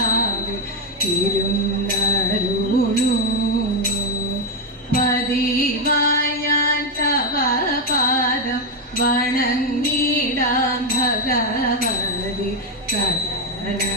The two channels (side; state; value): both; normal; correlation 0.05